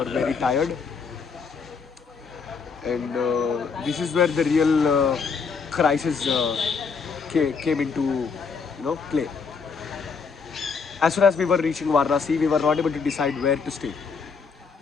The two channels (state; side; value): quieter; right; 5.4 dB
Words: very tired. And this is where the real crisis came into play. As soon as we were reaching Varanasi, we were not able to decide where to stay.